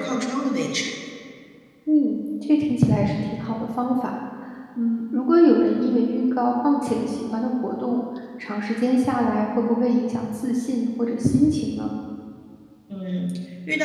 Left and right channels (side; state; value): both; identical; correlation 1.00